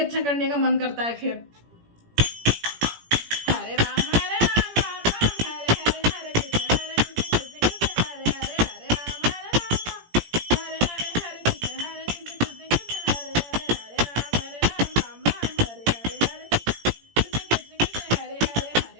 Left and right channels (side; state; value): left; late; 17 ms